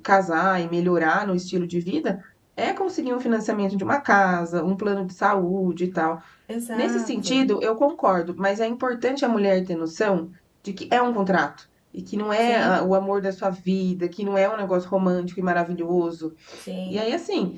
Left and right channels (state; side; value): identical; both; correlation 1.00